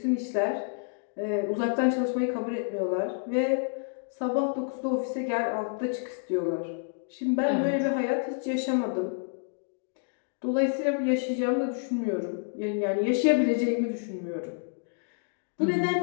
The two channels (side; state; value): right; silent; digital silence